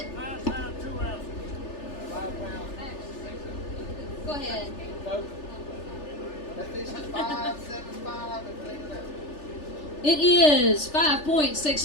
5 pounds, 2 ounces. Go ahead. That fish is 5.75 and clean it out. It is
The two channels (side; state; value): right; late; 3.4 ms